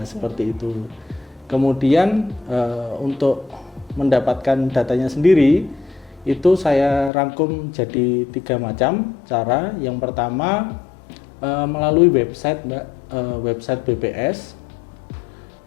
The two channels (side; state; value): right; drops out; at 7.1 s